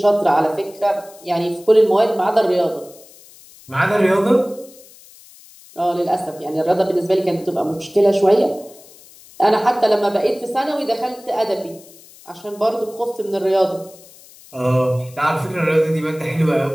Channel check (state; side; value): noise; left; hiss, 23 dB below the sound